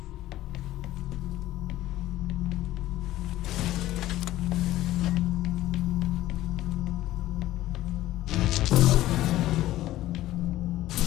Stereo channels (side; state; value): right; quieter; 15.1 dB